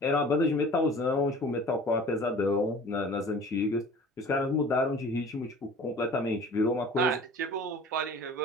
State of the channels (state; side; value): normal; both; correlation 0.44